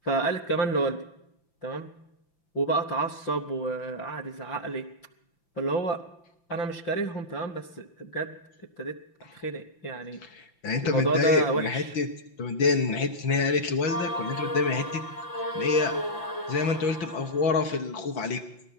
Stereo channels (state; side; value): late; right; 5.9 ms